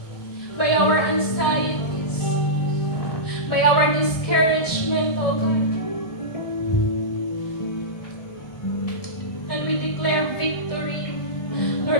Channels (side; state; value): right; late; 1.7 ms